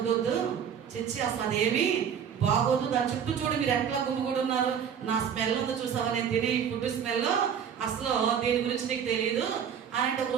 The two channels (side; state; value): left; quieter; 7.9 dB